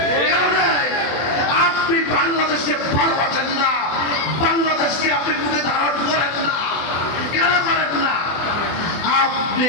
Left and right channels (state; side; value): late; right; 24 ms